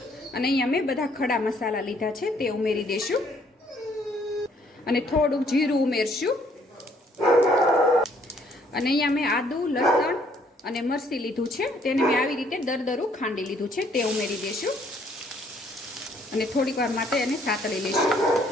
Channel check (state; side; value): normal; both; correlation 0.65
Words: અને અહીંયા મેં બધા ખડા મસાલા લીધા છે તે ઉમેરી દઈશું અને થોડુંક જીરું ઉમેરશું અને અહીંયા મેં આદુ, લસણ અને મરચી લીધું છે, તેને મેં આવી રીતે દરદરું ખાંડી લીધું છે તે ઉમેરી દઈશું અને થોડીક વાર માટે એને સાતળી લઈશું